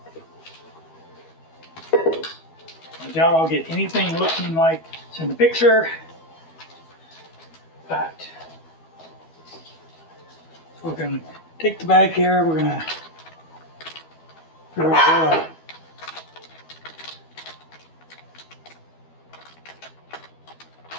I doubt I'll get anything looking like it's in the picture, but we're going to take the bag here. We're going to figure out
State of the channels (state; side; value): late; right; 12 ms